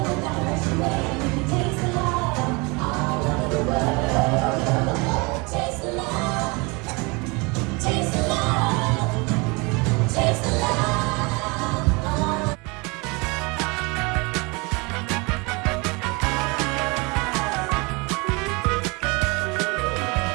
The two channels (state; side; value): quieter; left; 28.0 dB